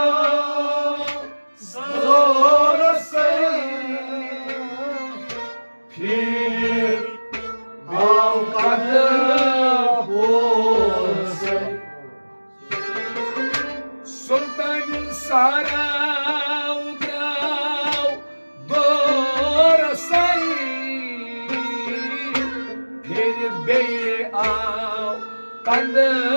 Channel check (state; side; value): inverted; both; correlation -1.00